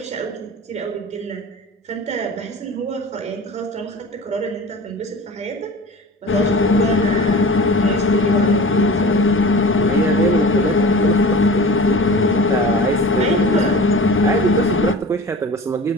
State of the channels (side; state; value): both; normal; correlation 0.37